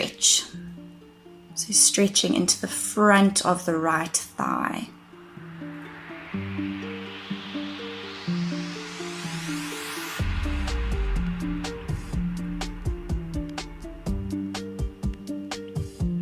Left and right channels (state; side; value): identical; both; correlation 1.00